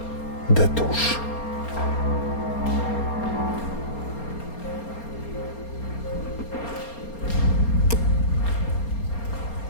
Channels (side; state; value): right; late; 4.3 ms